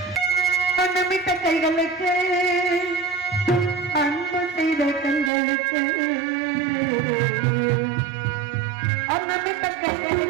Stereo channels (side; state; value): left; drops out; at 5.3 s